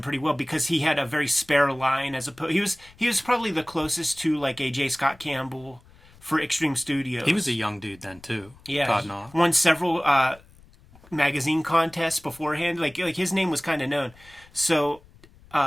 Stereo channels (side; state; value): left; noise; rumble, 26 dB below the sound